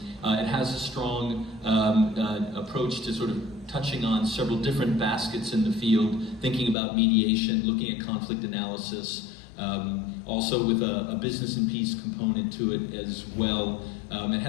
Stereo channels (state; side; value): drops out; right; at 6.8 s